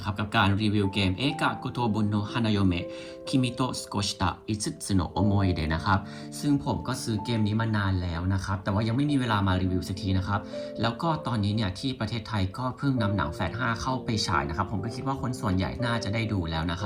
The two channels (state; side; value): identical; both; correlation 1.00